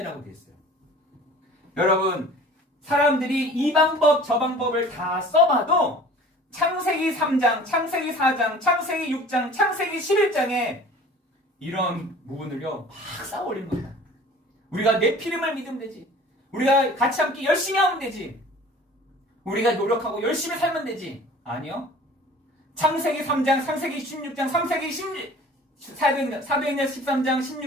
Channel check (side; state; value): both; normal; correlation 0.46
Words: 되어 있어요. 여러분 사람들이 이 방법 저 방법을 다 써봐도 창세기 3장, 창세기 4장, 창세기 6장, 창세기 11장에 이런 부분을요 막 쌓아올리는 겁니다. 우리가 내 피름을 믿으면 되지. 우리가 같이 함께 열심히 하면 되지. 우리가 노력하고 열심히 살면 되지. 아니요. 창세기 3장, 창세기 16장, 사도행전 13장,